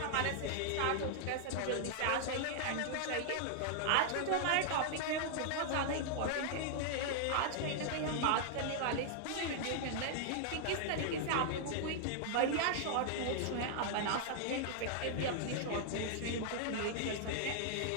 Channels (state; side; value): different; both; correlation -0.01